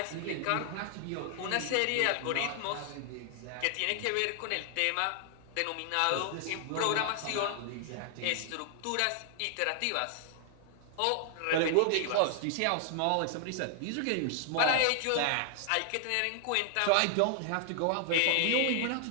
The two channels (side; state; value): both; different; correlation 0.00